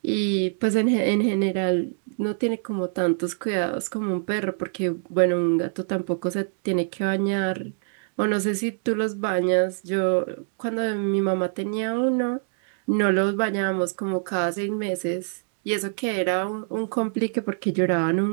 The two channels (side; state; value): left; silent; digital silence